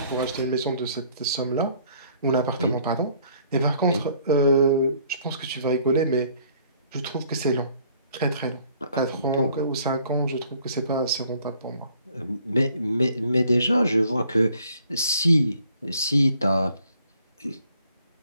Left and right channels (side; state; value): both; inverted; correlation -0.61